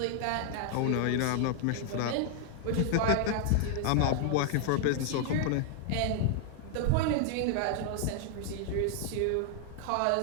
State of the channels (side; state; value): both; different; correlation 0.00